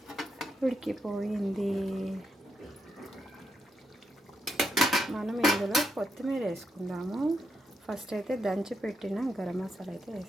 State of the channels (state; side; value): normal; both; correlation 0.81